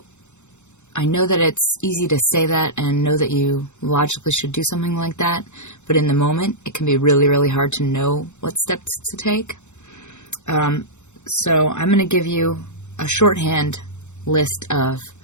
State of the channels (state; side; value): late; right; 0.84 ms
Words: I know that it's easy to say that and know that you logically should do something like that, but in the moment, it can be really, really hard to know what steps to take. So I'm going to give you a shorthand list of